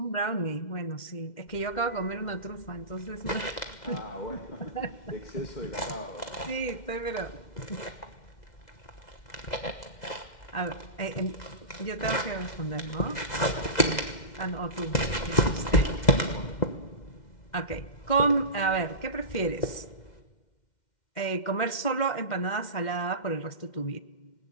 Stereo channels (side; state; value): right; late; 2.1 ms